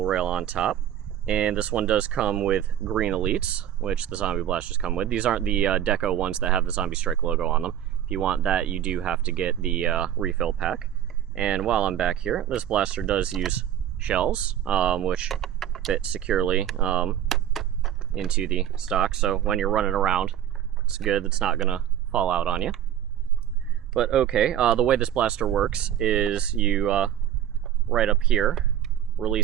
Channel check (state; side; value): quieter; left; 10.9 dB